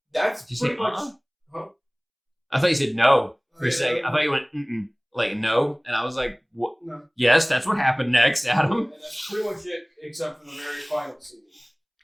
that's pretty much. Huh? I thought you said no for a second. I thought you went like no, and I was like, "What?" No. Yes, that's what happened next, Adam. And that's pretty much it, except for the very final scene,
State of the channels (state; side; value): identical; both; correlation 1.00